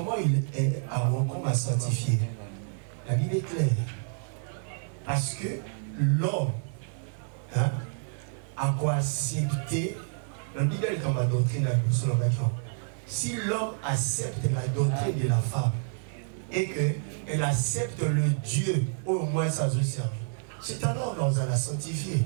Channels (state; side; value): silent; left; digital silence